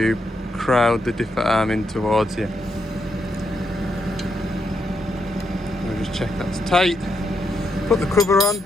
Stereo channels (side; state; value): both; normal; correlation 0.81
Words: crowd the dipper arm in towards you. We'll just check that's tight, put the cover on,